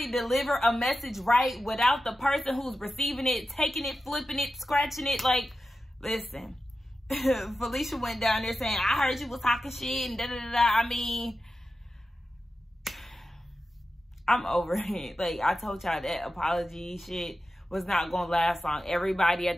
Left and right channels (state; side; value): normal; both; correlation 0.92